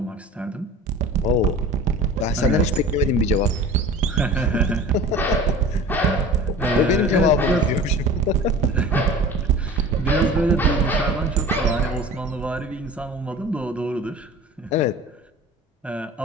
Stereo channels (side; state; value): both; normal; correlation 0.39